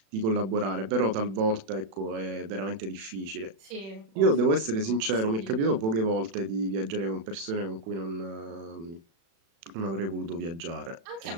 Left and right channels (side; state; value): left; late; 36 ms